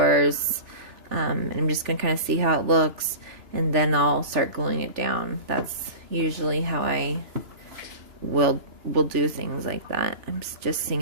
And I'm just going to kind of see how it looks. And then I'll start gluing it down. That's usually how I will do things like that. I'm just seeing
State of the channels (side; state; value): left; late; 3.4 ms